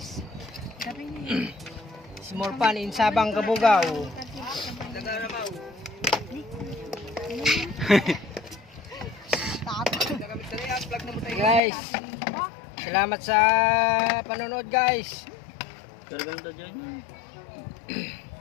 Small pan in Sabang Kabugaw. Guys, Salamat sa panonood guys.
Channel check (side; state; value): right; drops out; at 11.6 s